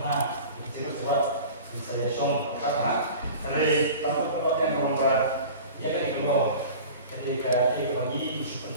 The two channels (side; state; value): both; inverted; correlation -0.39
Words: itu sebab saya show apa dari tempat-tempat yang berubah ya kan itu ketika dia bagi super